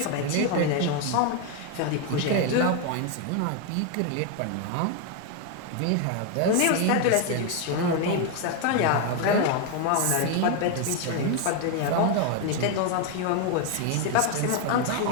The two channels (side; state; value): both; different; correlation 0.01